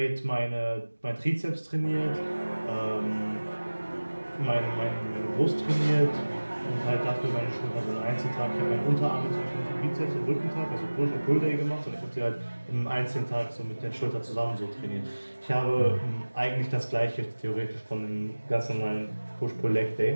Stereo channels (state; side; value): inverted; both; correlation -1.00